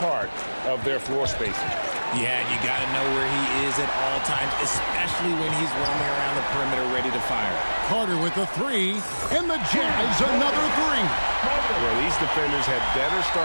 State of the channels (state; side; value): inverted; both; correlation -1.00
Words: of their floor spacing. Yeah, you got to know where he is at all times, especially when he's roaming around the perimeter ready to fire. Carter with the 3, and the Jazz another 3. Well, these defenders had better